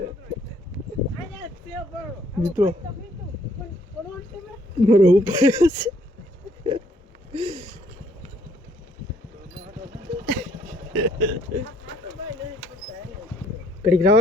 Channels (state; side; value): normal; both; correlation 0.65